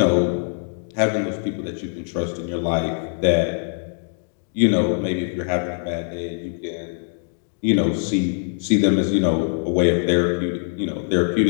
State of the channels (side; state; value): right; silent; digital silence